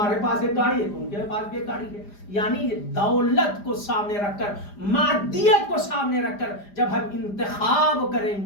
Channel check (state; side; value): late; right; 5.0 ms